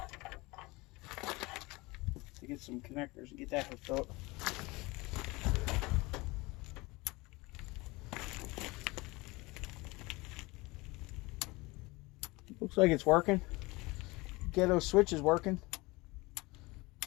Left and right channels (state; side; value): quieter; right; 23.2 dB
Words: To get some connectors and get that hooked up. Looks like it's working. Get those switches working.